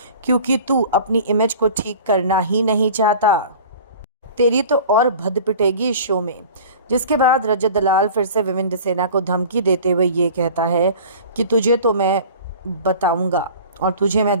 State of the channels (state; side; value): inverted; both; correlation -0.42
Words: क्योंकि तू अपनी इमेज को ठीक करना ही नहीं चाहता। तेरी तो और भद पिटेगी इस शो में। जिसके बाद रजत दलाल फिर से विविन डिसेना को धमकी देते हुए ये कहता है कि तुझे तो मैं बताऊंगा और तुझे मैं